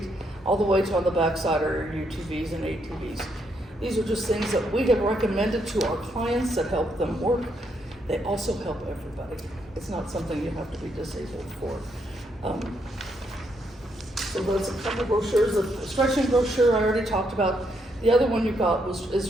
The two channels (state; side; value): normal; both; correlation 0.76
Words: all the way to on the backside are your UTVs and ATVs. These are just things that we have recommended to our clients that help them work. They also help everybody. It's not something you have to be disabled for. So there's a couple brochures. The stretching brochure I already talked about. The other one you got is